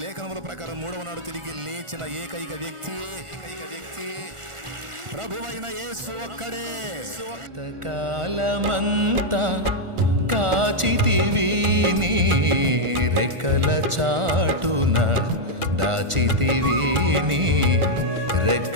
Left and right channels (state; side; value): late; left; 1.4 ms